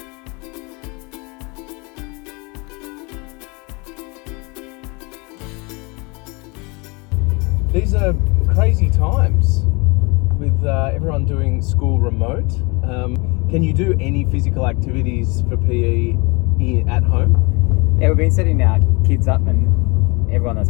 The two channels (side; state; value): right; quieter; 28.4 dB